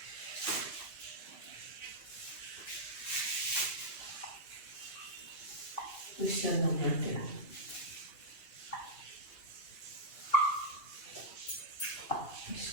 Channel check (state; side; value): late; right; 1.8 ms